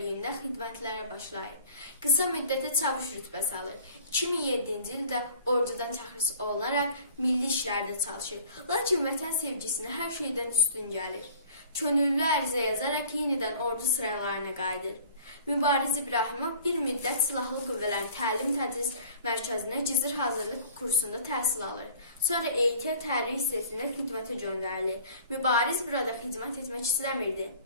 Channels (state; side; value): inverted; both; correlation -0.49